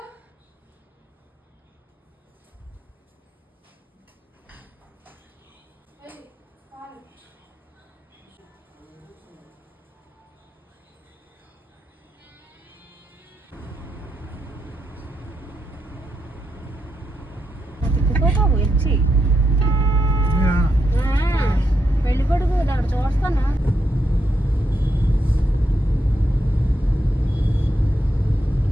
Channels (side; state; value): both; normal; correlation 0.81